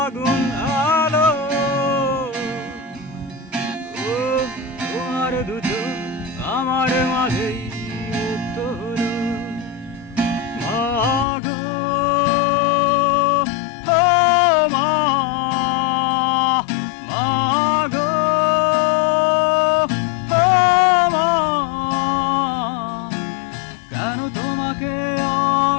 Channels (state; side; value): drops out; right; at 11.2 s